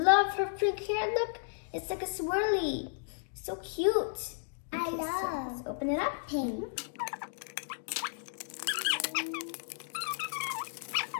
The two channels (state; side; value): silent; right; digital silence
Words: her pink hair. Look, it's like a swirly. So cute. I So love let's open it up. pink.